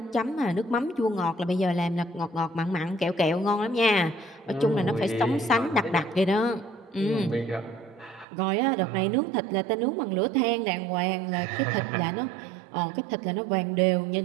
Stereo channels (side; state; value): left; drops out; at 8.2 s